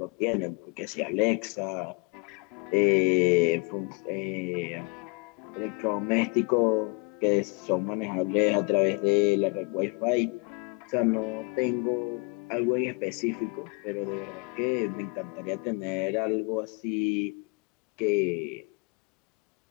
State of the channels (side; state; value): right; quieter; 31.3 dB